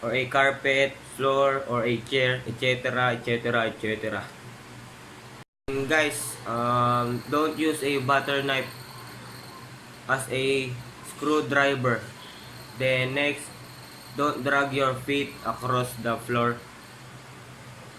or a carpet, floor, or a chair, etc., etc., etc. And guys, don't use a butter knife as a screwdriver. Then next, don't drag your feet across the floor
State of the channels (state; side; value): identical; both; correlation 1.00